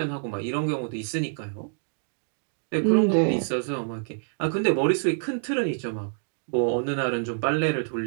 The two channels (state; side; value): silent; left; digital silence